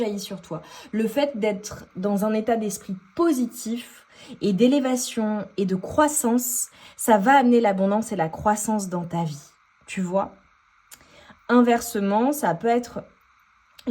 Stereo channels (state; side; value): identical; both; correlation 1.00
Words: sur toi. Le fait d'être dans un état d'esprit positif et d'élévation et de croissance, ça va amener l'abondance et la croissance dans ta vie. Tu vois ? Inversement, ça peut être